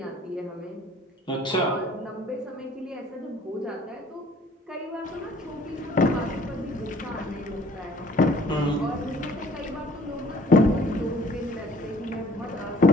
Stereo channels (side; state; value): both; normal; correlation 0.54